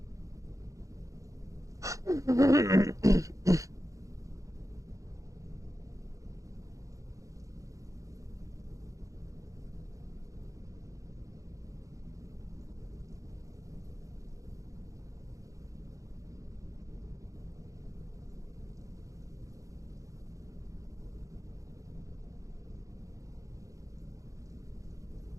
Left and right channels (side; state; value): left; late; 0.16 ms